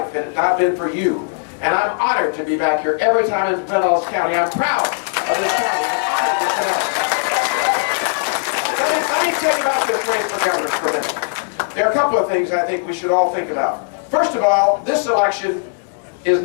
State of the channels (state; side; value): silent; right; 67 dB below the other